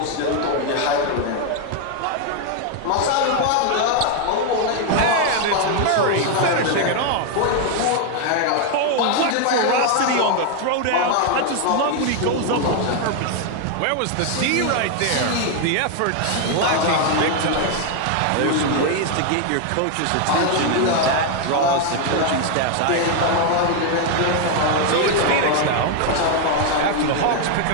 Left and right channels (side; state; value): both; different; correlation 0.01